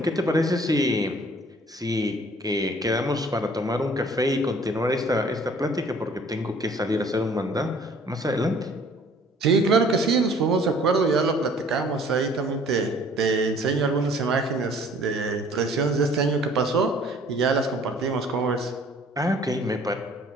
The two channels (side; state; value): both; normal; correlation 0.54